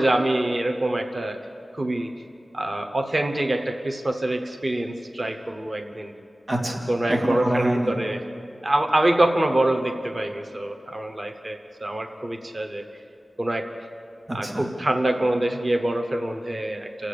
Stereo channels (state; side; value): normal; both; correlation 0.97